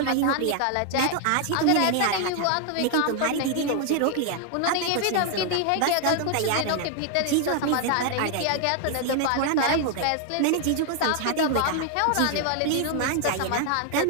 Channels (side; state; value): both; different; correlation 0.00